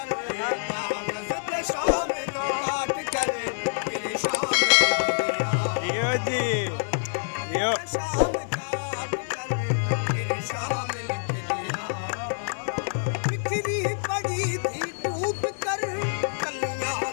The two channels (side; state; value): right; silent; digital silence